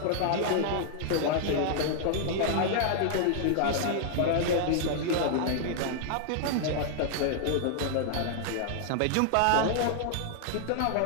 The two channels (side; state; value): both; different; correlation -0.01